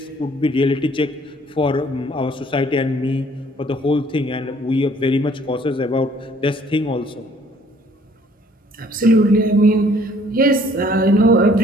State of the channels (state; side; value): normal; both; correlation 0.59